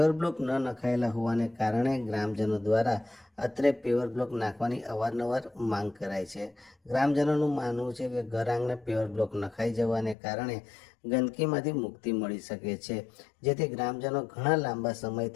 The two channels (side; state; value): right; drops out; at 10.2 s